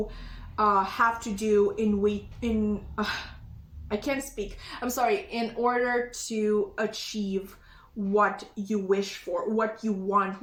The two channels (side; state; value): both; identical; correlation 1.00